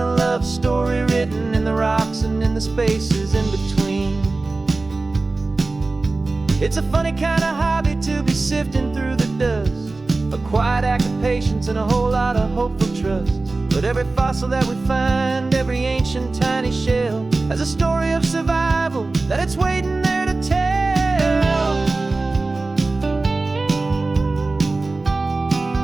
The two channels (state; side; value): quieter; left; 3.4 dB